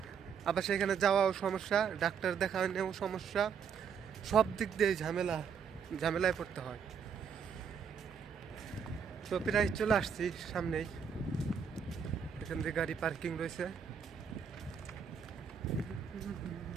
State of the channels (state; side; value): quieter; left; 6.9 dB